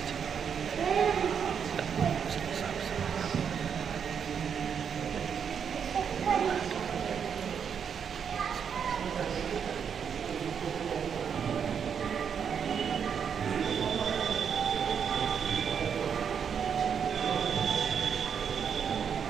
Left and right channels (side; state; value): left; quieter; 7.3 dB